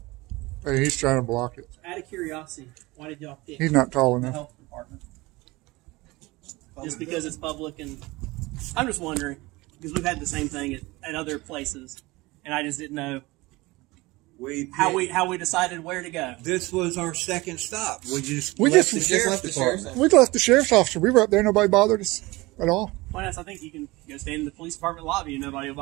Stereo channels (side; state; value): left; quieter; 21.7 dB